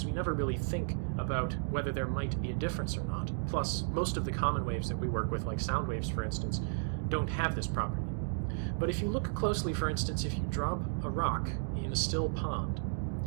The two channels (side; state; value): left; silent; digital silence